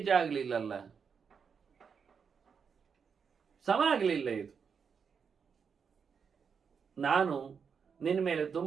ಆಗಲಿಲ್ಲಲ್ಲ, ಸಮ ಆಗಲಿಲ್ಲ. ಇದು ನಾನು ನಿನ್ನ ಮೇಲೆ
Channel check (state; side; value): quieter; left; 6.3 dB